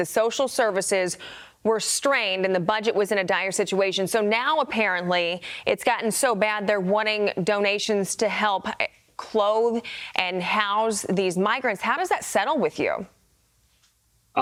social services were strained and the budget was in a dire situation. So now apparently it's gotten so bad they're wanting donations to help clothe and house these migrants. How does that settle with you?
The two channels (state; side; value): identical; both; correlation 1.00